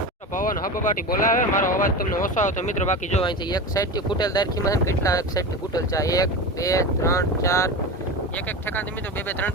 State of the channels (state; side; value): normal; both; correlation 0.25